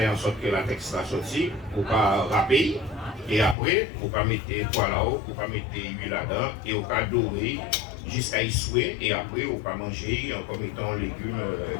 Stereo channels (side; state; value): right; drops out; at 3.6 s